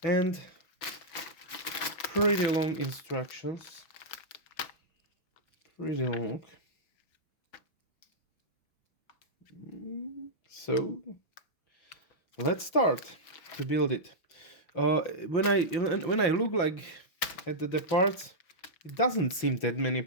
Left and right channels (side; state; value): right; late; 6.0 ms